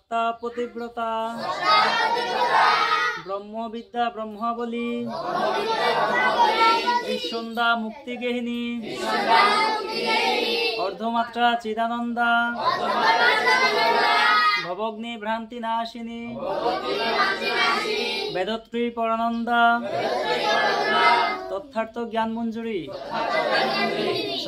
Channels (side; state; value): both; identical; correlation 1.00